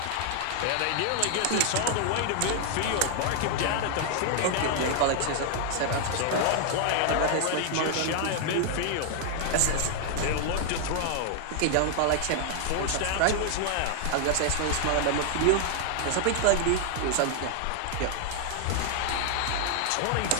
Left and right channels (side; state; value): both; different; correlation 0.00